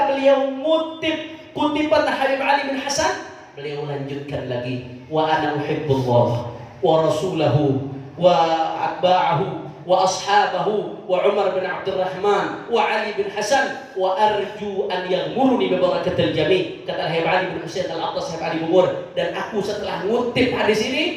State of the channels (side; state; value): both; identical; correlation 1.00